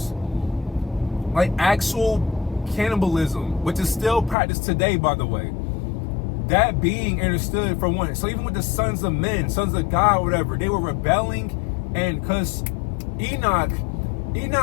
like actual cannibalism, which is still practiced today, by the way, that being understood for one. So even with the sons of men, sons of God, whatever, they were rebelling. And because Enoch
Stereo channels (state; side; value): drops out; right; at 4.4 s